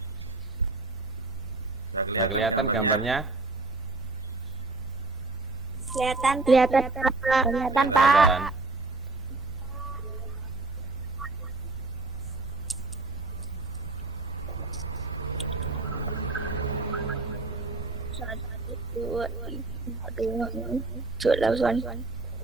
Sudah kelihatan gambarnya? Kelihatan. Kelihatan.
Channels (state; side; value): quieter; left; 3.4 dB